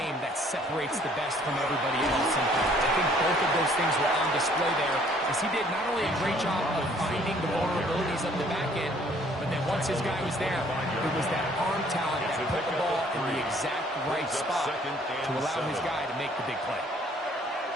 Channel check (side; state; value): both; normal; correlation 0.60